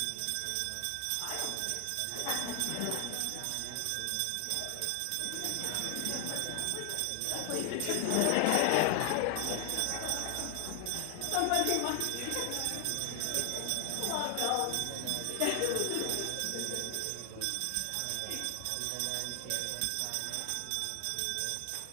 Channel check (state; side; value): different; both; correlation 0.00